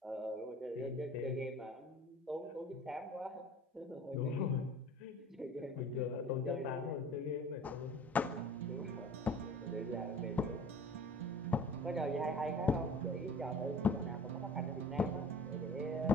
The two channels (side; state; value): both; normal; correlation 0.44